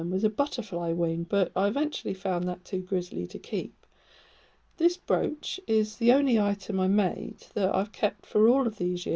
was a butterfly wing, but I eventually found that too grisly to keep. This brooch is the only item I made that I've kept for all of these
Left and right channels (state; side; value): identical; both; correlation 1.00